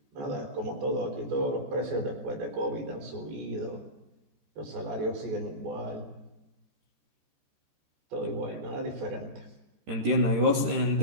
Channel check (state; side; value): late; left; 13 ms